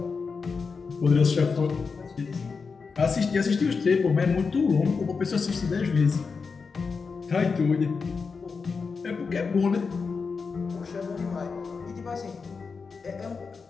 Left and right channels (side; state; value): right; quieter; 5.0 dB